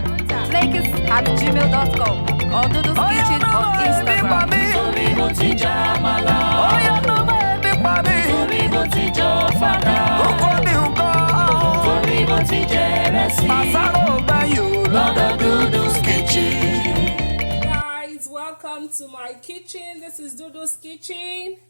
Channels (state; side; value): inverted; both; correlation -1.00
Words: flakes@gmail.com or Dhudhu's Kitchen on Instagram. Torí mo ti jẹ àmàlà. Oh yeah, no baby, baby. Torí mo ti jẹ ọ̀fadà. Torí mo ti jẹ ìrẹsì. Lọ́dọ̀ Dhudhu's Kitchen. Guys, welcome to my kitchen. This is Dhudhu's Kitchen.